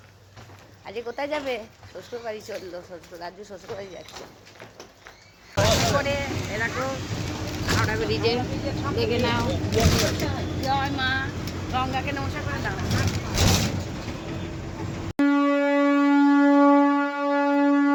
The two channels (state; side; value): identical; both; correlation 1.00